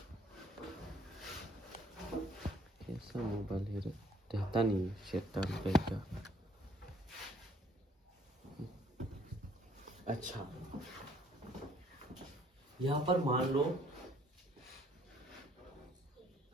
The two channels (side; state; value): both; normal; correlation 0.62